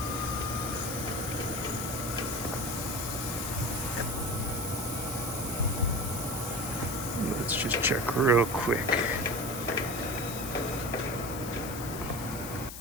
Let's just check real quick.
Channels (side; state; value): left; noise; hiss, 10 dB below the sound